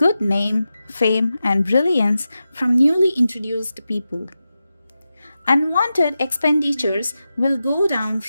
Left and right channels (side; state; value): both; inverted; correlation -0.91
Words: name, fame, and brilliance from newly introduced people. Unwanted expenditures will go down